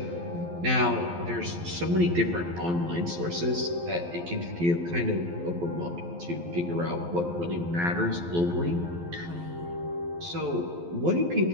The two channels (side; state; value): left; late; 12 ms